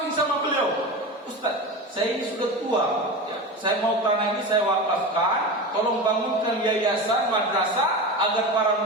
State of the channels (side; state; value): both; normal; correlation 0.26